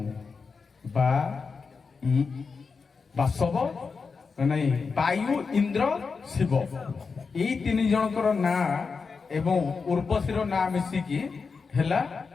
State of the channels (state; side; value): quieter; right; 5.0 dB